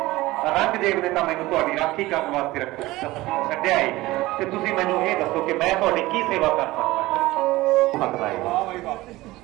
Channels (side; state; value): left; quieter; 18.7 dB